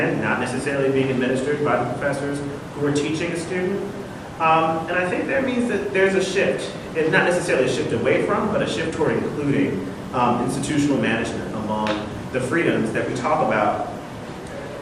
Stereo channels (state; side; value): identical; both; correlation 1.00